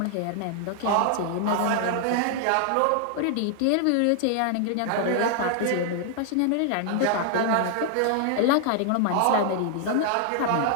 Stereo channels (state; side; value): different; both; correlation 0.00